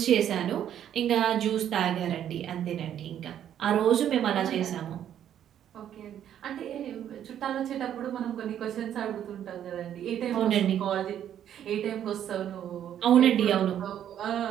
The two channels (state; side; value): quieter; left; 10.2 dB